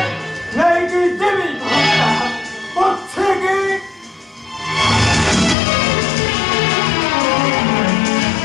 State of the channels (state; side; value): drops out; right; at 5.6 s